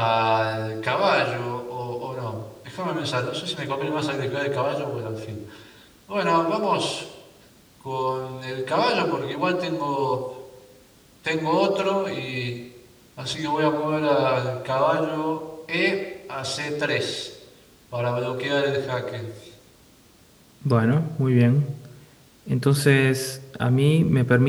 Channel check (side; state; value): both; identical; correlation 1.00